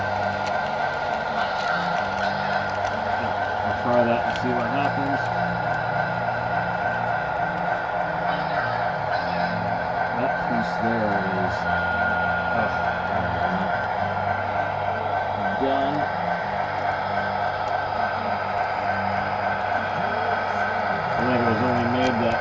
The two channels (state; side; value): identical; both; correlation 1.00